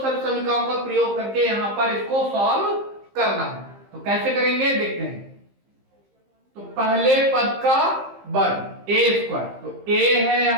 का प्रयोग करके यहाँ पर इसको सॉल्व करना है। तो कैसे करेंगे देखते हैं। तो पहले पद का वर्ग a स्क्वायर, तो a है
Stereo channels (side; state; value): left; late; 15 ms